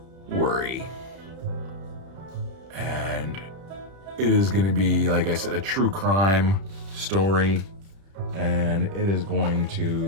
Worry, and it is gonna be, like I said, a true crime story, and it is going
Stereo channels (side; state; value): left; late; 31 ms